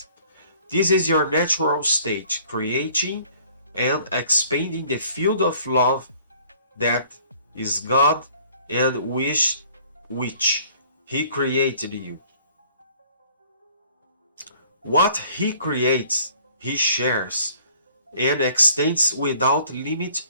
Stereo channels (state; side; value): inverted; both; correlation -0.56